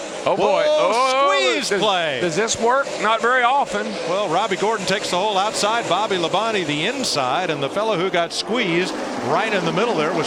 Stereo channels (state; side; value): identical; both; correlation 1.00